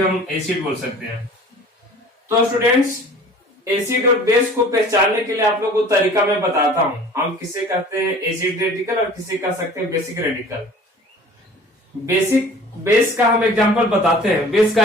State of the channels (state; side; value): normal; both; correlation 0.46